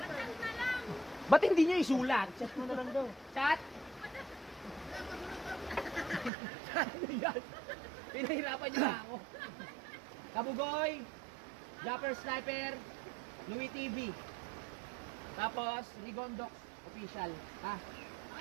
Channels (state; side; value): drops out; left; at 6.3 s